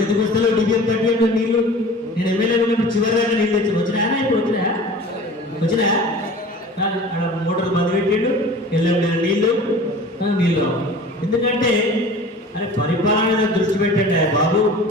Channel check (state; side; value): normal; both; correlation 0.41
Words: ఎందుకు వస్తాలో డిబిఎం కట్టి నీళ్ళు నేను ఎమ్మెల్యే ఉన్నప్పుడు చివరి దాకా నీళ్ళు తెచ్చి వచ్చినాయా? ఇప్పుడు వచ్చినా కానీ అక్కడ మోటార్ బంద్ పెట్టిండు, ఎల్లం నీళ్ళు రావు. ఎందుకంటే అరే పరిపాలన మీద దృష్టి పెట్టండి బాబు.